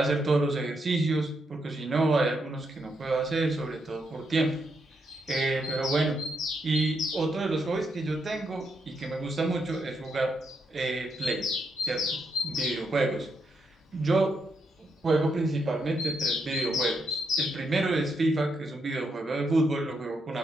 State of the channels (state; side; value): normal; both; correlation 0.80